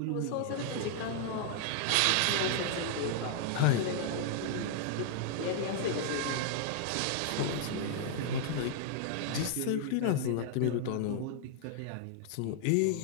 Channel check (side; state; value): both; different; correlation -0.01